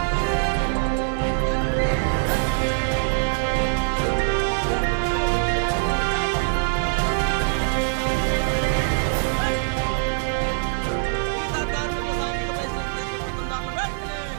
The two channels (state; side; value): silent; left; 60 dB below the other